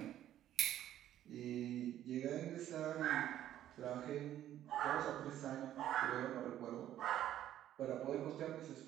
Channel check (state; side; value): quieter; left; 12.0 dB